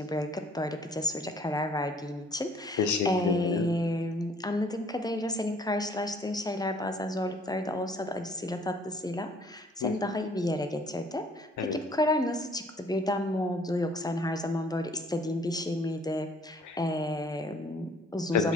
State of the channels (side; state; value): both; normal; correlation 0.57